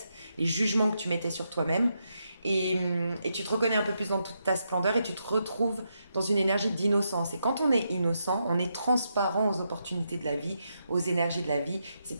les jugements que tu mettais sur toi-même, et tu te reconnais un peu plus dans toute ta splendeur, et tu te retrouves dans une énergie d'innocence. Et quand on est innocent, on est transparent aux opportunités de la vie, aux énergies de la vie. C'est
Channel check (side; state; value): both; inverted; correlation -0.82